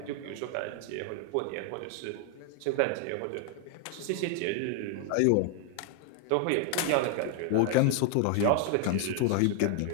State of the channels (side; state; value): both; different; correlation 0.00